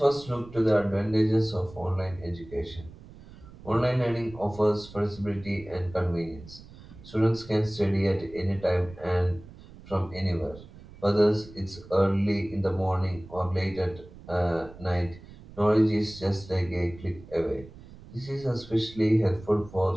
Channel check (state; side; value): noise; right; rumble, 19 dB below the sound